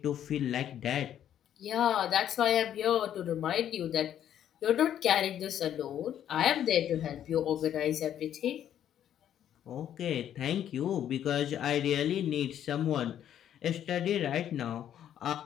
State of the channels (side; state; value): right; quieter; 10.4 dB